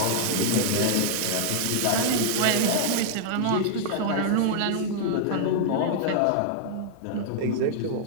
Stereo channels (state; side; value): different; both; correlation -0.01